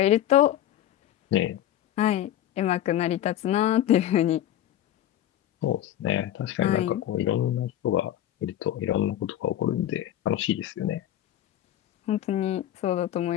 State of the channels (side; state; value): right; quieter; 12.2 dB